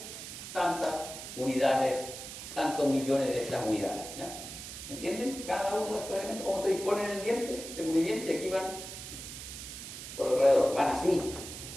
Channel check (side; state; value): right; noise; hiss, 10 dB below the sound